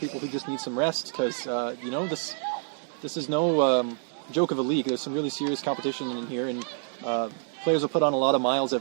who just need some rest because, you know, this is no joke of a league. There's some really serious competition in here, and players will put on a lot of miles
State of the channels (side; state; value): left; silent; 60 dB below the other